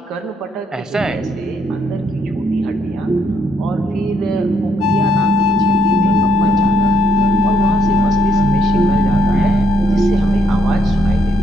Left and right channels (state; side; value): normal; both; correlation 0.72